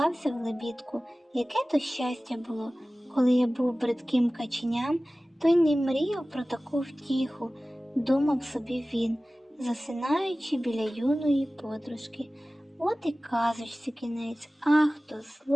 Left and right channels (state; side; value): normal; both; correlation 0.97